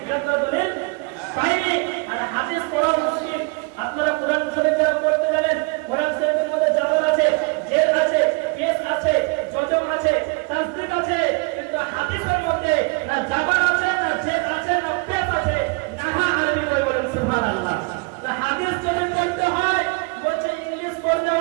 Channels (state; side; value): quieter; left; 30.2 dB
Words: মিলাদ করা দলিল পায়নি। আর হাদিস পড়া মুশকিল। আপনারা কোরআন শরীফ যারা পড়তে জানেন, কোরআন শরীফের মধ্যে জাবার আছে, জের আছে, পেশ আছে, জজম আছে, তাসদীদ আছে, কিন্তু হাদিসের মধ্যে না জাবার আছে, না জের আছে, না পেশ আছে, না আরবি বই। বলেন সুবহানাল্লাহ। তা হাদিস যদি পড়তে হয়, বলছে ইংলিশ পড়তে